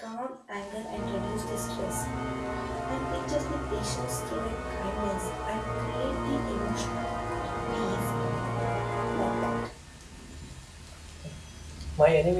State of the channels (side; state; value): both; identical; correlation 1.00